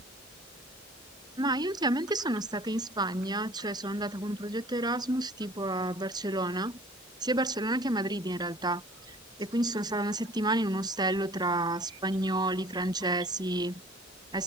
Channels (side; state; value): both; normal; correlation 0.50